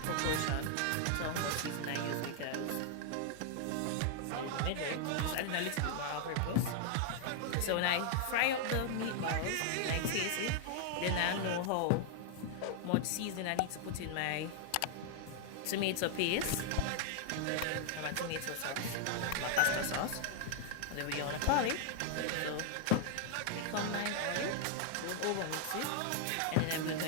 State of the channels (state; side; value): different; both; correlation 0.00